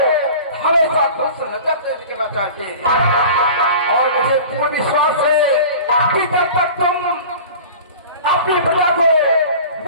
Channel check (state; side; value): inverted; both; correlation -0.39